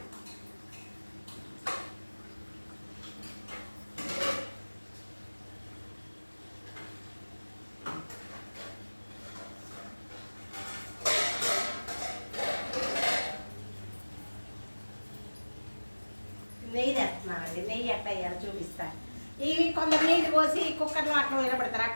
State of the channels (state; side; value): inverted; both; correlation -1.00